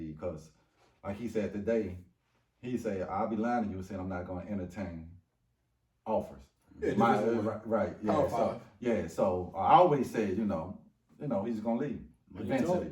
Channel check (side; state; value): both; identical; correlation 1.00